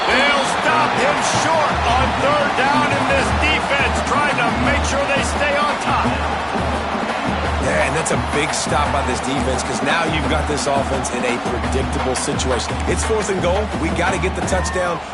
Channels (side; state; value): both; identical; correlation 1.00